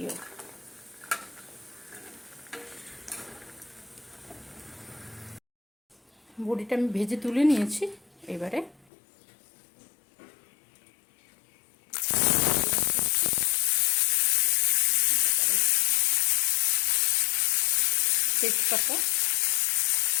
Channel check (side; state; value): right; drops out; at 8.8 s